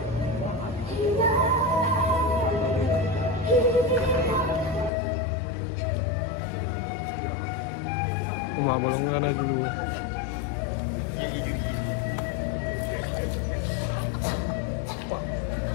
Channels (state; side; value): drops out; right; at 4.9 s